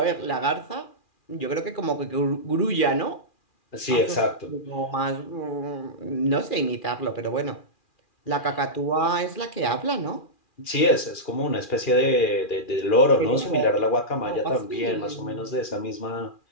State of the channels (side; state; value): right; late; 2.4 ms